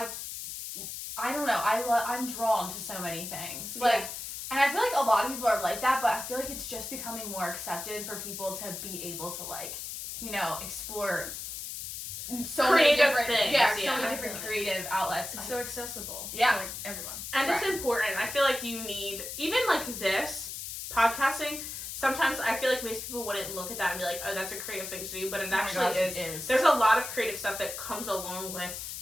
don't know. I'm drawn to so many things. Like, and I feel like a lot of people are like that, but I feel like it's just becoming more accepted for people to be able to like, you know, explore so creative many different things. So many different creative outlets. It's so accessible. Yeah. To, like everyone. And it's important. I feel like you need, even like this, podcasting, sometimes I feel like most people wouldn't look at that and be like, oh, that's a creative thing to do, but it actually is. There's a lot of creative stuff that comes along with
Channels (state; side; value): noise; left; hiss, 7 dB below the sound